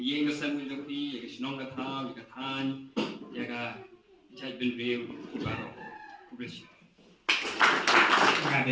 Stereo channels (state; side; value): identical; both; correlation 1.00